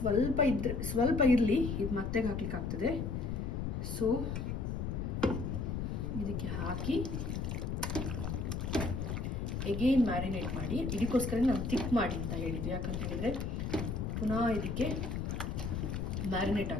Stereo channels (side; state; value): left; noise; rumble, 2 dB below the sound